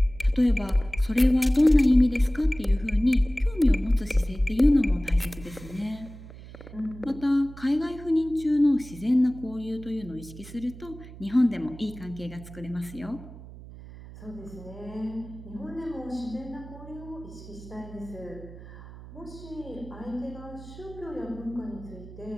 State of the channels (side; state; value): right; noise; hum, 16 dB below the sound